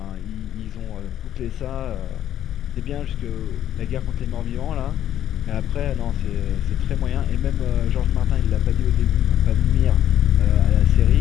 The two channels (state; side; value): quieter; right; 11.2 dB